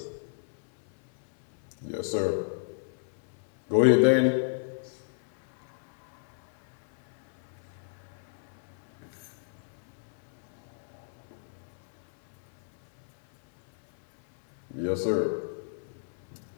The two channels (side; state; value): right; silent; 57 dB below the other